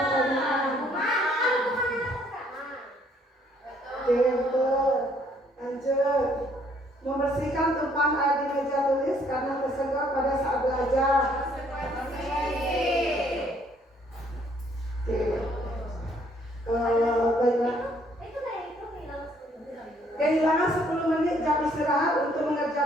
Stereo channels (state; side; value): normal; both; correlation 0.65